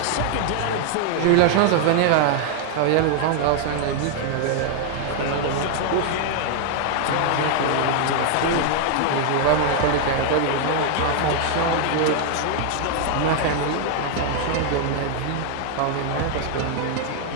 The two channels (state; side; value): different; both; correlation 0.00